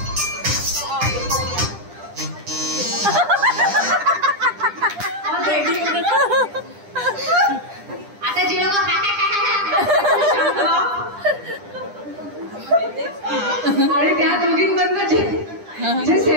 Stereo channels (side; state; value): left; late; 10 ms